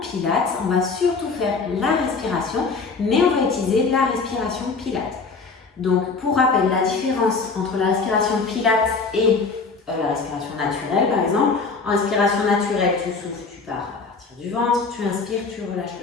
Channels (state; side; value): quieter; right; 4.4 dB